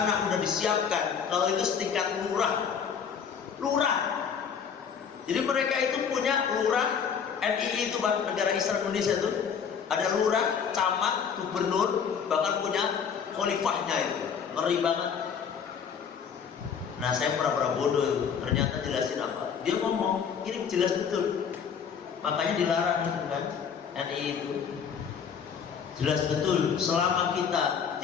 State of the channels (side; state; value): right; quieter; 7.0 dB